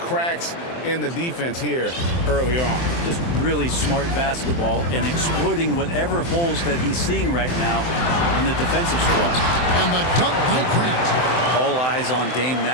in the defense here early on. Just really smart basketball and exploiting whatever holes that he's seeing right now in the defensive squad. And the dunk by Grant. All eyes on Dame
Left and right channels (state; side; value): late; right; 23 ms